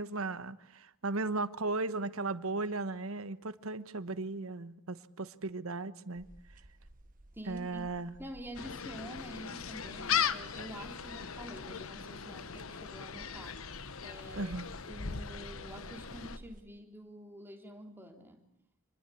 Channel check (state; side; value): normal; both; correlation 0.13